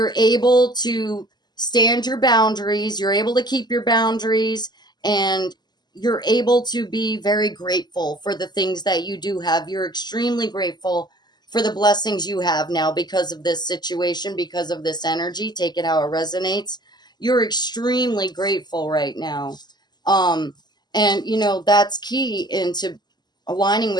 able to stand your boundaries. You're able to keep your boundaries, and you're able to be very grateful for the things that you do have. You're extremely grateful for the blessings you have now because of this situation, because of this energy. Take it how it resonates. You're extremely grateful right now. And, that's key into aligning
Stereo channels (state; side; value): late; right; 0.21 ms